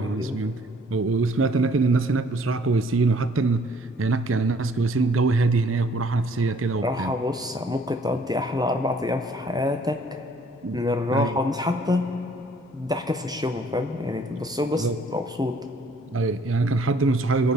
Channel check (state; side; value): normal; both; correlation 0.59